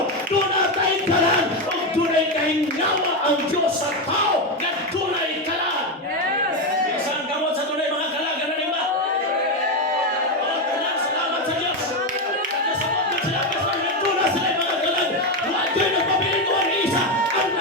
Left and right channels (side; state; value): both; normal; correlation 0.10